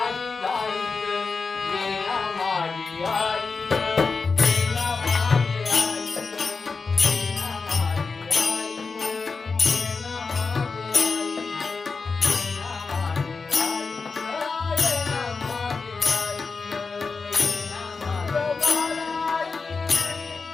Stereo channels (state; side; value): quieter; right; 4.6 dB